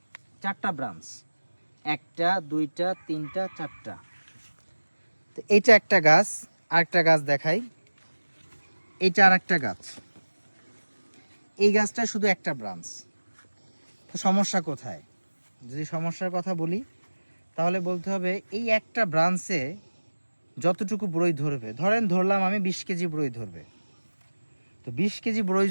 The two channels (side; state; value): both; inverted; correlation -1.00